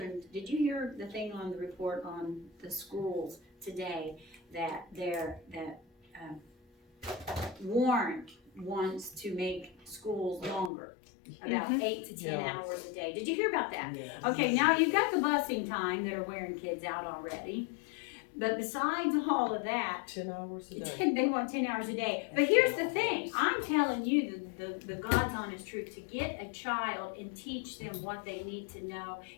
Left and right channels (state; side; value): drops out; right; at 10.7 s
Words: did you hear the thing on the report on the schools today that Warren wants to make schools longer, about 8 to 10 hours a day. Did you hear about that? Yes. Okay, now you've got the busing time that are wearing kids out already. But besides all of that, 10 hours a day. they want 10 hours a day. But here's the thing, I'm telling you the God's honest truth, to get a child and teach them what they need to know,